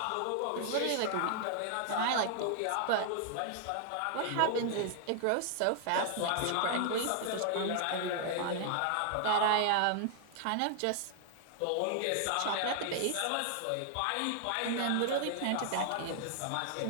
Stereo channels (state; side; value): different; both; correlation 0.00